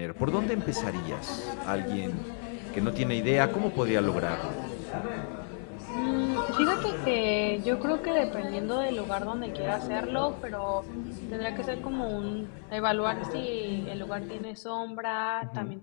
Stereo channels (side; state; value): right; silent; 57 dB below the other